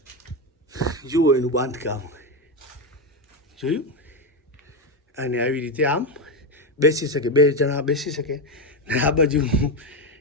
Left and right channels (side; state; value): both; normal; correlation 0.10